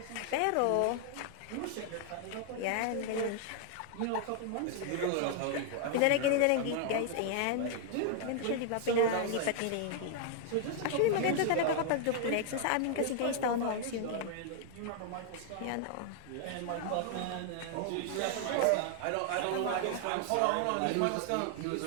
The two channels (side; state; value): both; different; correlation 0.00